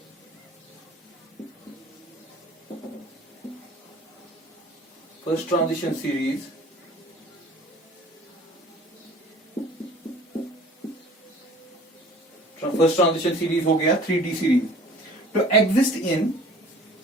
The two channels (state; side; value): normal; both; correlation 0.48